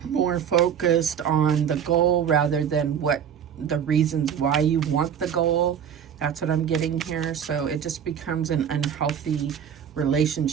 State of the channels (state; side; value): quieter; left; 8.4 dB